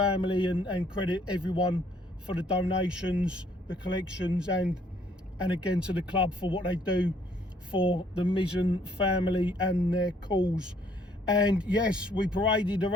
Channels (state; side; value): normal; both; correlation 0.64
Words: and credit everyone for the donations, the collections, and again to the club for what they do for the Mizzen family and their cause. And yes, we paraded